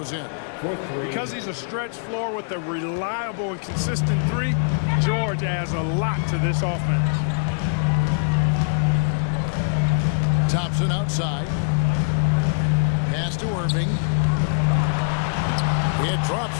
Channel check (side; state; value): right; silent; digital silence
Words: in. Because he's a stretch floor with a reliable and consistent three, George adds a lot to this offense. Thompson outside. Pass to Irving. It drops